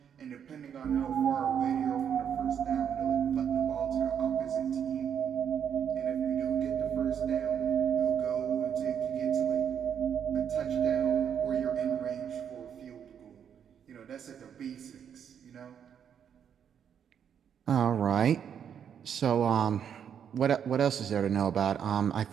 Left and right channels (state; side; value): quieter; left; 8.3 dB